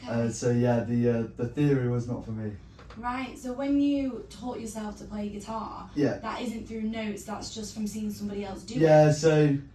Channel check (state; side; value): identical; both; correlation 1.00